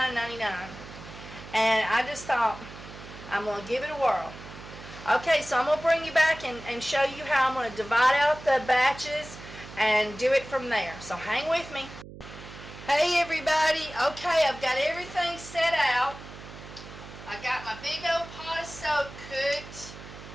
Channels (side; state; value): right; noise; hum, 15 dB below the sound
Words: And I just thought, I'm going to give it a whirl. Okay, so I'm going to bring you back and show you how I'm going to divide out the batches and do it from there. So hang with me. Hey everybody. Okay, I've got everything set out. I got my big old pot of soap cooked,